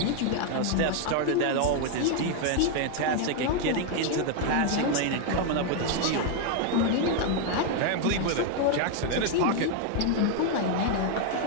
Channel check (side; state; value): both; different; correlation 0.01